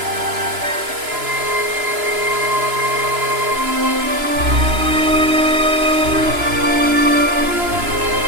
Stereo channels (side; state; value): left; late; 3.0 ms